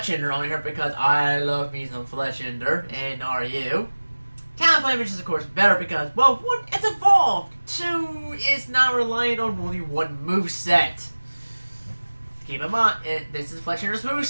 on here because I love me some Fletchinder, and are you? Talonflame is, of course, better because, well, 1, it's evolved. 2, it's not reliant on only one moveset. Keep in mind, this is Fletchinder's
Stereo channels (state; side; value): inverted; both; correlation -1.00